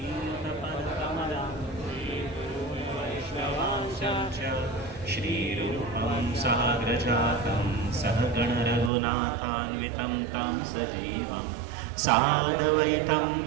वैष्णवांशं च श्रीरूपं साग्रजातं सहगणरघुनाथान्वितं तं सजीवं साद्वैतं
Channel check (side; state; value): left; drops out; at 8.9 s